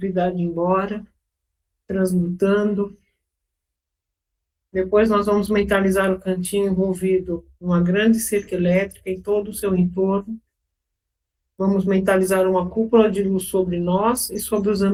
embora, transmutando. Depois nós vamos mentalizar o cantinho envolvido numa grande cerca elétrica em todo o seu entorno. Vamos mentalizar uma cúpula de luz sobre nós e sobre os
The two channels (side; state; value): both; identical; correlation 1.00